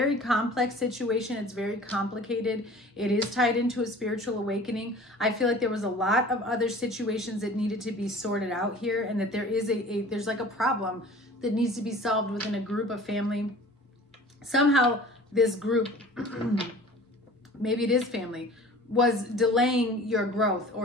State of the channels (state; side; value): normal; both; correlation 0.44